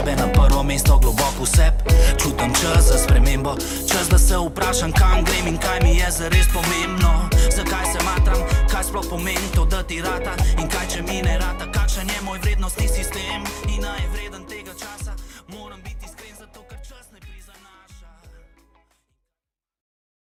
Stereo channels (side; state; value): both; identical; correlation 1.00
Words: na prvo mesto, globoko v sep. Čutim čas za spremembo, čas da se vprašam, kam grem in kaj mi je zares pomembno. Zakaj se matram, kaj sploh pomeni to, da ti rata, in kaj če mi ne rata, kakšen je moj vrednostni sistem.